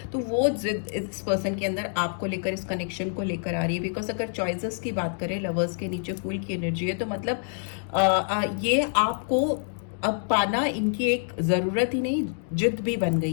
तो वो जिद इस पर्सन के अंदर आपको लेकर, इस कनेक्शन को लेकर आ रही है। बिकॉज अगर चॉइसेस की बात करें, लवर्स के नीचे फूल की एनर्जी है, तो मतलब ये आपको अब पाना इनकी एक ज़रूरत ही नहीं, जिद भी बन गई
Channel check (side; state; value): right; silent; digital silence